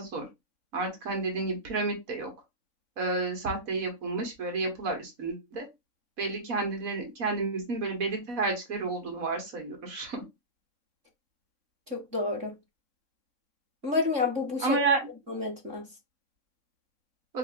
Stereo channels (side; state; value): left; late; 3.6 ms